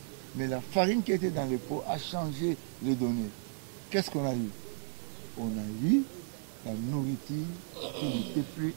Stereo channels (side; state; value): left; silent; digital silence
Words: mais la farine qui était dans le pot a changé les données. Qu'est-ce qu'on a eu? On a eu la nourriture qui n'était plus